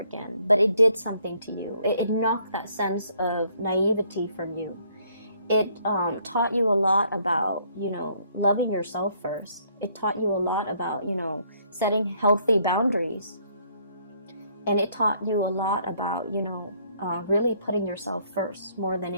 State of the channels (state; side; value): inverted; both; correlation -0.66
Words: But it did something to you. It knocked that sense of naivety from you. It taught you a lot about, loving yourself first. It taught you a lot about, setting healthy boundaries. And it taught you a lot about, really putting yourself first more than